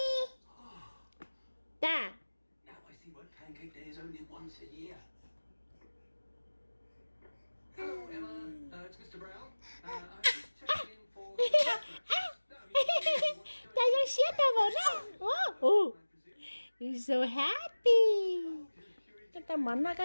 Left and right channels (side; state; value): both; inverted; correlation -1.00